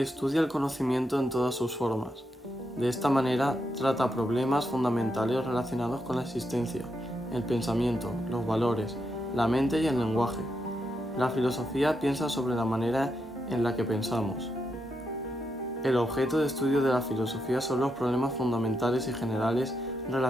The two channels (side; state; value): both; normal; correlation 0.83